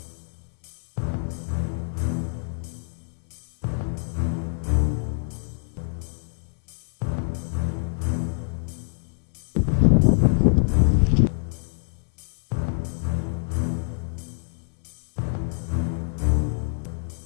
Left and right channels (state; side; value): silent; right; digital silence